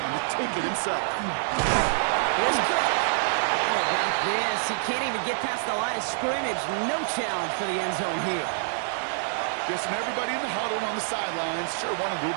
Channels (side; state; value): left; silent; digital silence